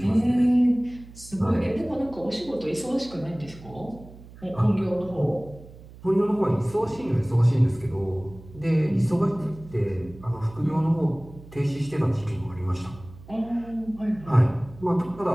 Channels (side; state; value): right; noise; hum, 19 dB below the sound